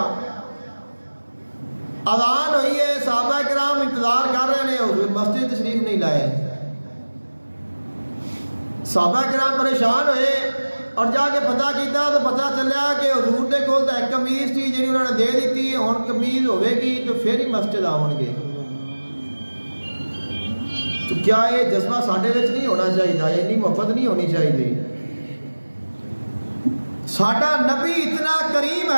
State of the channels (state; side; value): inverted; both; correlation -1.00